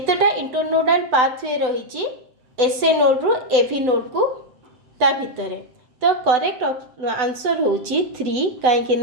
इंटरनोडल पाथवे रही एसए नोड रु एवी नोड को ता भितर। तो करेक्ट आंसर होची 3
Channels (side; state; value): left; late; 7.9 ms